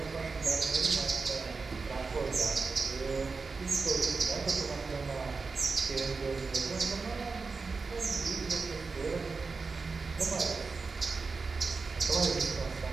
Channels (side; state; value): left; quieter; 4.4 dB